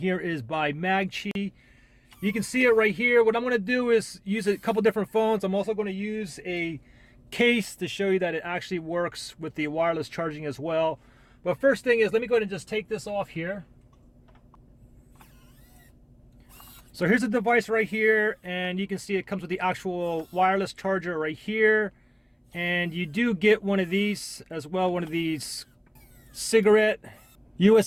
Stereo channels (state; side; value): identical; both; correlation 1.00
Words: is by Magqi. You can see it right here. What I'm going to do is use a couple different phones. I'm also going to use a case to show you that it actually works with the wireless charging as well. But first thing is, let me go ahead and just take this off here. So here's the device right here, and you can see it comes with the actual wireless charger right here. And you do get one of these as well, one of these cigarette